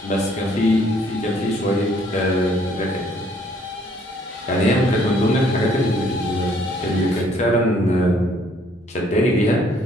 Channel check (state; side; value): normal; both; correlation 0.63